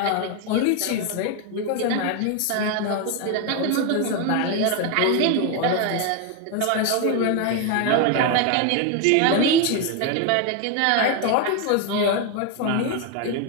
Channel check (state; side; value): different; both; correlation 0.01